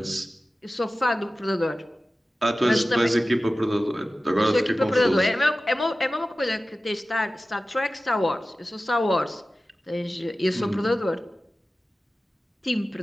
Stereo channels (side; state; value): both; normal; correlation 0.95